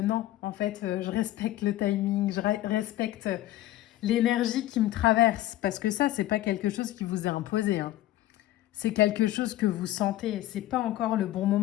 en fait, je respecte le timing, je respecte l'énergie qui me traverse, parce que ça, c'est pas quelque chose qui vous est imposé, hein. C'est quelque chose que vous sentez, c'est pas encore le bon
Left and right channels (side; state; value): right; quieter; 14.8 dB